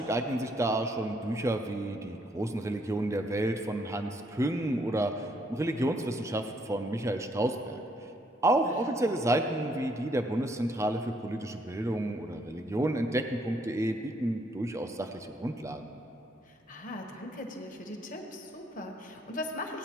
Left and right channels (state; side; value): normal; both; correlation 0.70